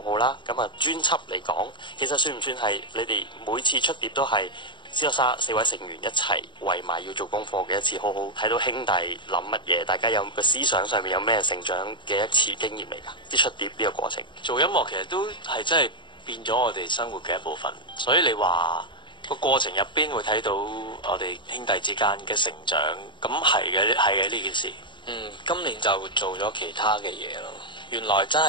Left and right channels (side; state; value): right; late; 0.23 ms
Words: 好啦。咁啊專輯嚟講，其實算唔算係你哋每次出碟都係COSSTAR 4位成員一齊圍埋要做功課嘅一次，好好睇到兄弟諗乜嘢，大家有個思想上面有咩成長嘅一次經驗嚟㗎？即出碟呢個過程，做音樂其實都係真係變咗我哋生活嘅一部分，所以你話個過程入邊會睇到我哋兄弟之間嘅成長，咁係嘅呢件事。今年就做咗其他嘅嘢咯。原來真